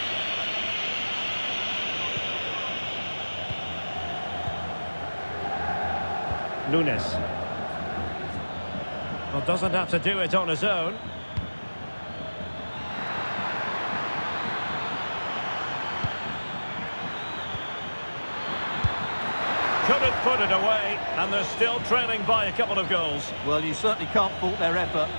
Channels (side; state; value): both; inverted; correlation -1.00